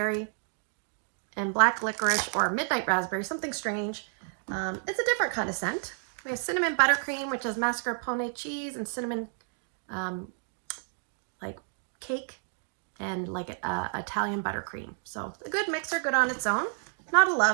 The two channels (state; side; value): silent; left; 58 dB below the other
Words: and black licorice or midnight raspberry, something strange. It's a different kind of scent. We have Cinnamon Buttercream, which is mascarpone cheese and cinnamon like cake and like Italian buttercream. So a good mixer, good on its own. Not a